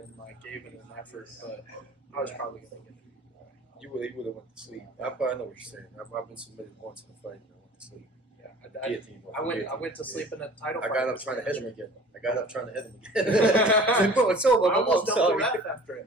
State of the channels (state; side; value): normal; both; correlation 0.45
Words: like gave it an effort. But I was probably gonna get it. You would have went to sleep. I know what you're saying. I've been submitted once in a fight and I went to sleep. Yeah, I went to sleep in a title fight. I got up trying to hit him again. Like, bro, it's over. I almost dumped the ref after